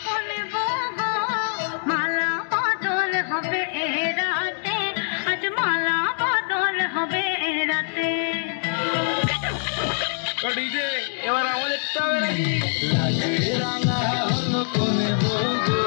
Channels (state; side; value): silent; right; 63 dB below the other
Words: কোলে বগো মালা বদল হবে এ রাতে আজ মালা বদল হবে এ রাতে ডিজে এবার আমাদেরটা হবে নাকি? লাজে রাঙা হলো কোনে বগো